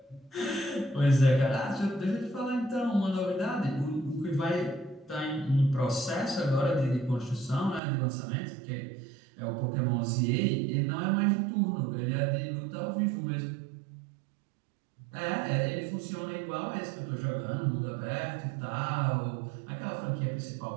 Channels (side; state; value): left; drops out; at 7.8 s